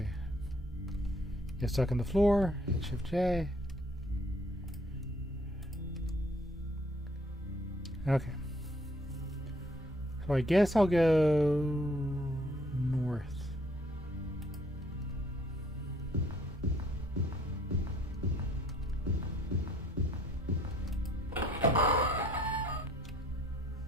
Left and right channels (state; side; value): normal; both; correlation 0.62